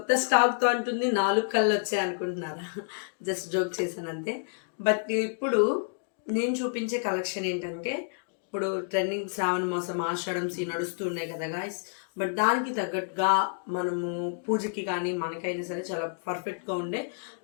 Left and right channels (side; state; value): right; silent; digital silence